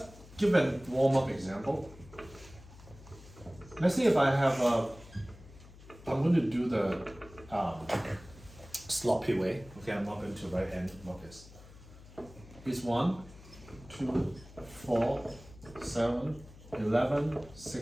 give a warm-up example. Let's see if I have I'm going to do the sloppy way. Okay, I'm not going to write n like this. It's 1, 2, 4, 7, 11,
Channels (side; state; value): left; noise; hum, 20 dB below the sound